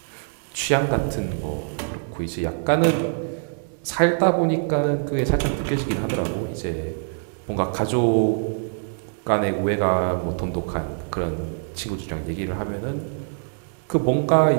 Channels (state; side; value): silent; left; 63 dB below the other